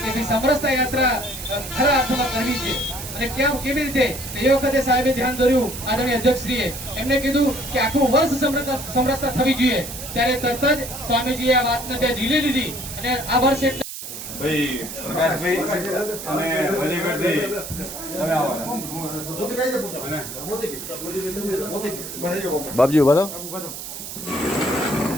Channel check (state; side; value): noise; right; hiss, 9 dB below the sound